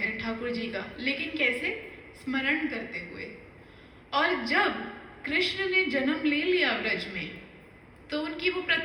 ठाकुर जी का, लेकिन कैसे, स्मरण करते हुए। और जब कृष्ण ने जन्म ले लिया व्रज में, तो उनकी वो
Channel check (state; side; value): identical; both; correlation 1.00